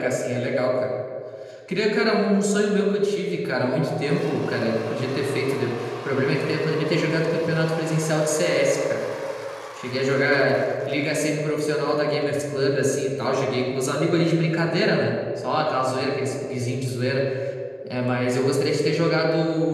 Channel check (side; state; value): both; identical; correlation 1.00